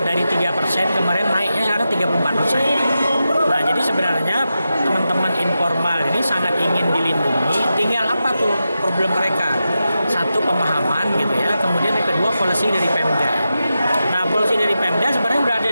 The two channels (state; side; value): inverted; both; correlation -0.90